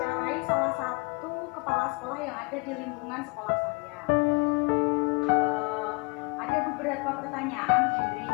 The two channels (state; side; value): quieter; right; 28.8 dB